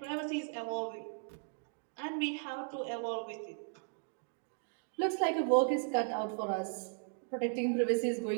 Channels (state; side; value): silent; left; digital silence